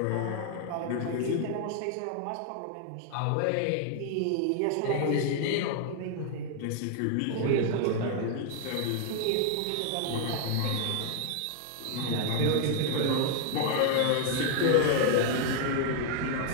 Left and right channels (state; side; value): different; both; correlation 0.00